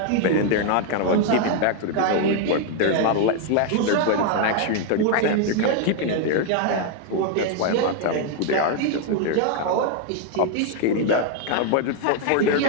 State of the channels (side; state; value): both; different; correlation 0.00